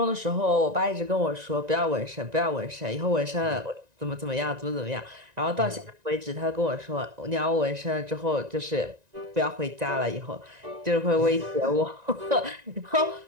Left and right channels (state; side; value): late; left; 1.9 ms